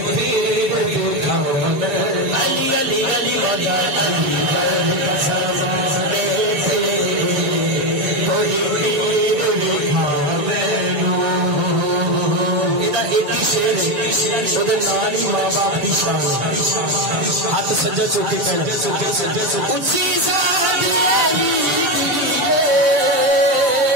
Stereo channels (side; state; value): left; late; 6.8 ms